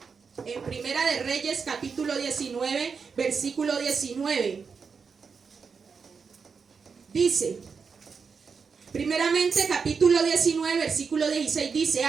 En Primera de Reyes, capítulo 19, versículo 19. Dice, primeramente, capítulo 19, versículo 16, dice:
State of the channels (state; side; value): quieter; left; 5.5 dB